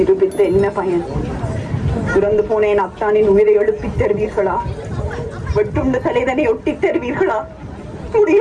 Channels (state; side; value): identical; both; correlation 1.00